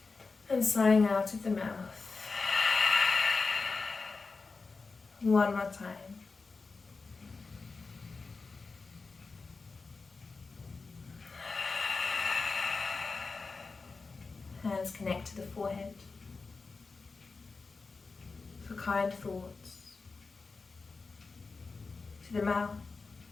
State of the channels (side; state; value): right; quieter; 4.2 dB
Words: and sighing out of the mouth. One more time. Hands connect to the forehead for kind thoughts. To the mouth